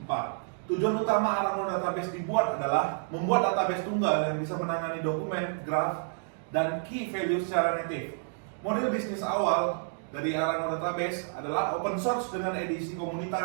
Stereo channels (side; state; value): left; silent; digital silence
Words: Tujuan utama Arango Database dibuat adalah membuat database tunggal yang bisa menangani dokumen, graf, dan key value secara native. Model bisnis awal dari Arango Database adalah open source dengan edisi